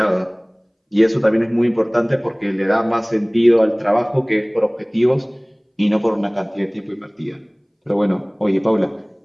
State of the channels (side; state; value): both; identical; correlation 1.00